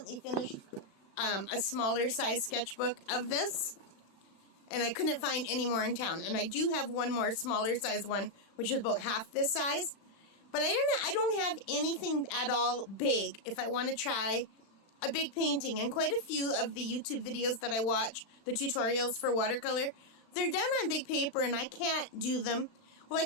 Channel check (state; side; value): late; right; 36 ms